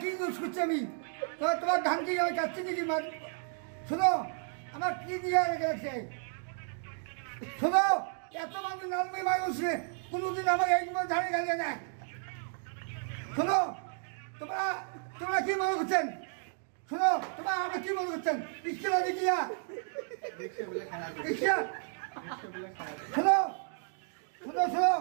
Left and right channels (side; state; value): left; silent; 56 dB below the other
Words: কি ইউজ করছো আমি, তোমার ধান কি আমি কাটছি নাকি মার? শোনো, আমার কি দিয়ে রেখে রাখছে, শোনো, এত মানুষ নামবে মানুষ কোনোদিন আমাকে একবার ধানে গালিয়ে নেয়। শোনো, তোমরা কি মনে করছেন? শোনো, তোমরা আমরা কি মনে করছেন? ইস্কেলা দেখিয়া ইস্কেলা, শোনো শোনো শোনো,